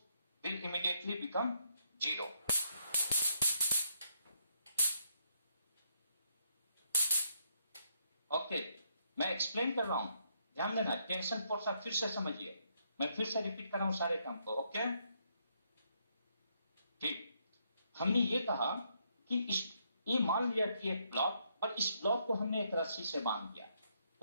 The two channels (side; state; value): both; inverted; correlation -0.75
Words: will immediately become zero. Okay, मैं एक्सप्लेन कर रहा हूं, ध्यान देना. टेंशन फोर्स आप फिर से समझिए, मैं फिर से रिपीट कर रहा हूं सारे काम को. ओके, ठीक. हमने ये कहा कि ये मान लिया कि एक ब्लॉक, और इस ब्लॉक को हमने एक रस्सी से बांध दिया.